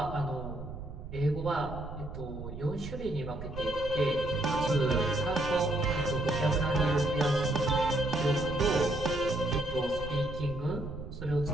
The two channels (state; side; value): noise; right; rumble, 10 dB below the sound